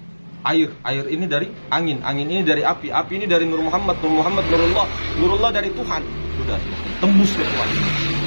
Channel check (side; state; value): both; inverted; correlation -1.00